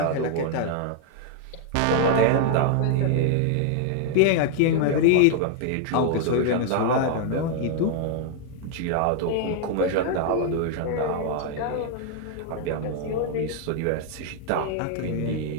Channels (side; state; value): both; different; correlation 0.00